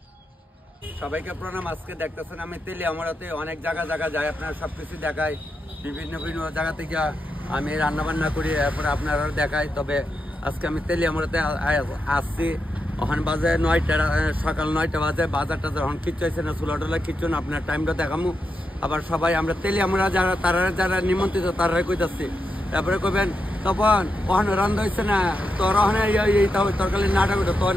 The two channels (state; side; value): normal; both; correlation 0.86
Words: সবাইকে প্রণাম। আজকে দেখতেছেন আমি তেলি আমরাতে অনেক জায়গা যাই, আপনারা সবকিছু দেখাই, বিভিন্ন জায়গা থেকে আমি রান্না বান্না করি, এরপরে আপনারা দেখাই। তবে আজকে আমি তেলি আমরাতে আসছি, ওখানে বাজে 9টা, সকাল 9টা বাজে। বাজারটা যখন কিচ্ছু হয়েছে না, চুলা টুলা কিচ্ছু না, আপনার টাইমটা দেখামু। আবার সবাই আমরা তেলি আমরা যারা নিমন্ত্রিত তারাই কইতাছি। তারপরে কবেন তখন ওখানে রান্না হয়েছে না, তোর ওখানে তরকারি নাটা করতো, তোর